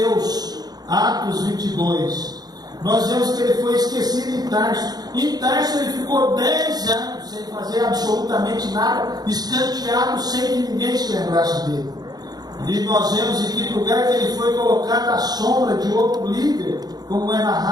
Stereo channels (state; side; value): late; left; 0.19 ms